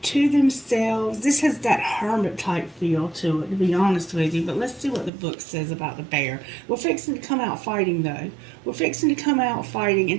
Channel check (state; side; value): drops out; left; at 5.1 s